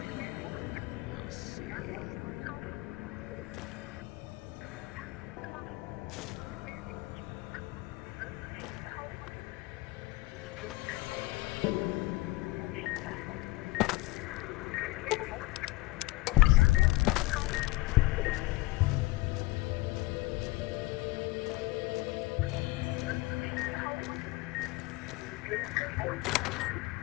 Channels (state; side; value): quieter; right; 20.7 dB